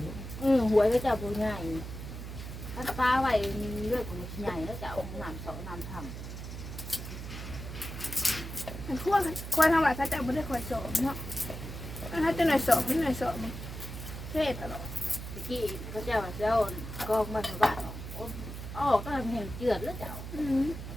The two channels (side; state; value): right; noise; hum, 9 dB below the sound